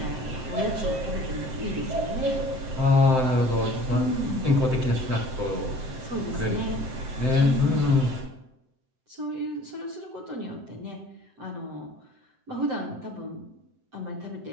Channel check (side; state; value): left; late; 7.8 ms